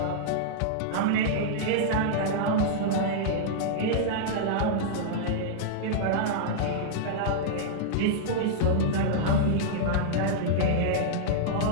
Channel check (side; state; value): both; different; correlation -0.02